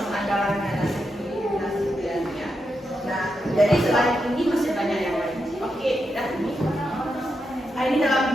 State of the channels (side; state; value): both; normal; correlation 0.85